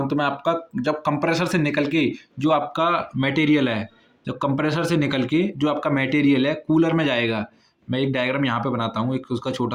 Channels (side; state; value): both; identical; correlation 1.00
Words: तो मैं आपका, जब कंप्रेसर से निकल के जो आपका मटेरियल है, जब कंप्रेसर से निकल के जो आपका मटेरियल है कूलर में जाएगा। मैं एक डायग्राम यहाँ पे बनाता हूँ एक उसका